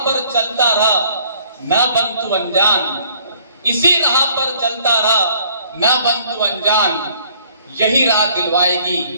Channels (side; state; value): both; inverted; correlation -0.60